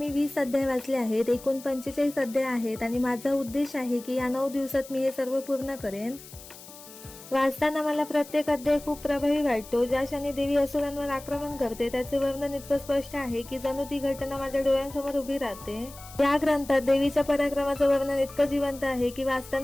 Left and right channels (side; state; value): left; noise; hiss, 18 dB below the sound